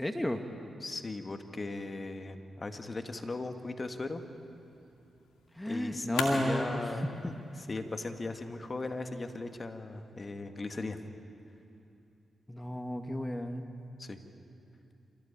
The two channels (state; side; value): normal; both; correlation 0.92